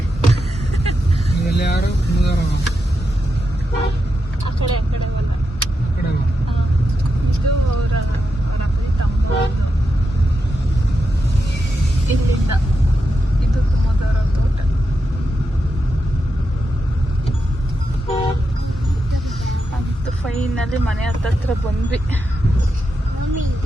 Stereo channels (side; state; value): both; normal; correlation 0.87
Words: ಇವೆಲ್ಲ ಯಾರು ಮುದಾರವ ಆ ಕಡೆ ಅವಲ್ಲ. ಕಡೆ ಇದು ಅವರ ಅಪ್ಪಿ ತಮ್ಮ ಇಲ್ಲಿಂದ ಇದು ಕುಮದವರ ತೋಟ. ಅಂತ ಫೈನಲ್ಲಿ ಮನೆ ಹತ್ತತ್ರ ಬಂದ್ವಿ. ಮಮ್ಮಿ